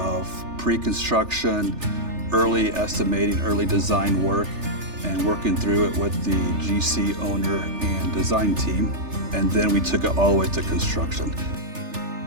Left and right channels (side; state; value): left; late; 3.3 ms